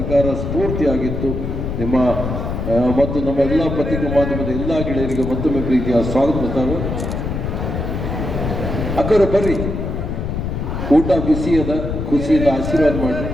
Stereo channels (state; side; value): noise; left; rumble, 3 dB below the sound